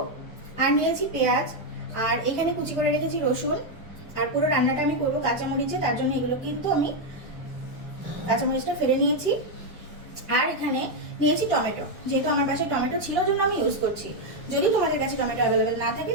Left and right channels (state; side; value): normal; both; correlation 0.03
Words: আর নিয়েছি পেঁয়াজ, আর এখানে কুচি করে রেখেছি রসুন। আর পুরো রান্নাটা আমি করবো কাঁচামরিচে, তার জন্য এগুলো কিন্তু আমি কাঁচামরিচটা ফেলে নিয়েছি। আর এখানে নিয়েছি টমেটো, যেহেতু আমার বাসায় টমেটো ছিল জন্য আমি ইউজ করছি। যদি তোমাদের কাছে টমেটো অ্যাভেলেবেল না থাকে